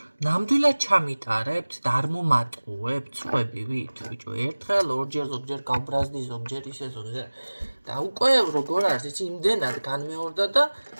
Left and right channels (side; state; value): both; inverted; correlation -1.00